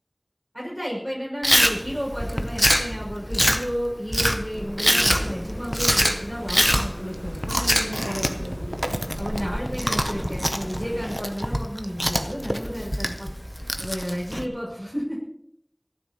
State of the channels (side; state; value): both; identical; correlation 1.00